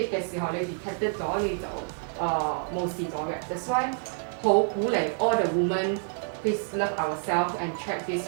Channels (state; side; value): silent; left; 55 dB below the other